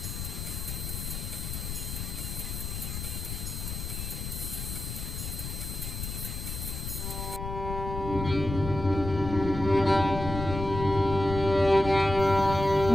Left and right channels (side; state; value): left; noise; rumble, 6 dB below the sound